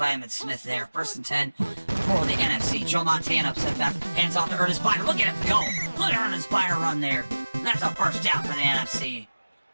Emmitt Smith there. 1st and 10 for the NFC. Joe Montana upset back. Hands off to Ernest Biner. Look at him go. Look at Ernest Biner run there. That's a 1st down for the NFC.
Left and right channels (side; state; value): both; inverted; correlation -1.00